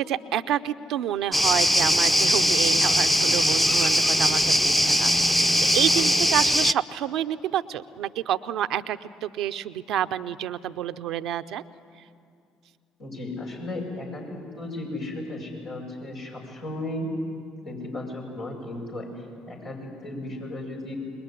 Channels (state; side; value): normal; both; correlation 0.79